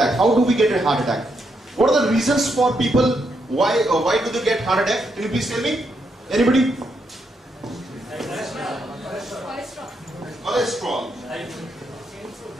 How do we get a heart attack? What are the reasons for people, why do they get heart attack? Can you please tell me? Anybody? Cholesterol,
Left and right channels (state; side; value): normal; both; correlation 0.79